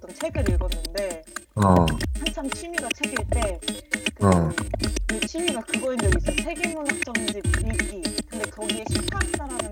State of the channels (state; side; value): identical; both; correlation 1.00